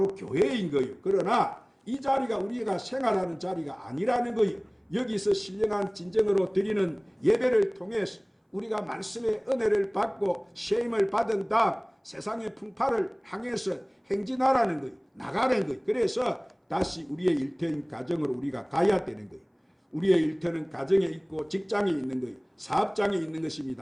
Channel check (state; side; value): identical; both; correlation 1.00